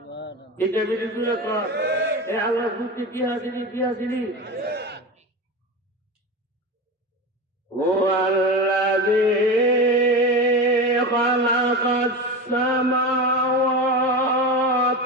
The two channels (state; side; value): normal; both; correlation 0.24